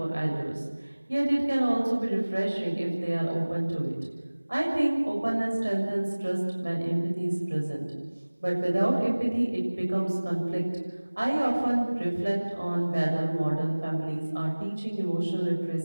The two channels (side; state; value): both; inverted; correlation -1.00